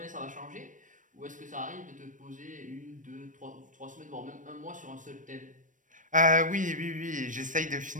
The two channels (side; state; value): left; late; 0.37 ms